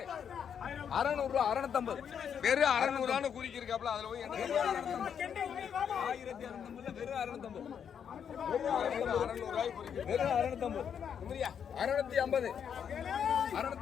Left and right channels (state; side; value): quieter; right; 7.9 dB